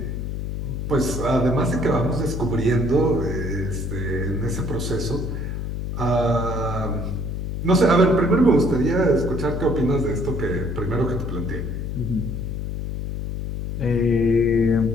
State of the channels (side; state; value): left; noise; hum, 4 dB below the sound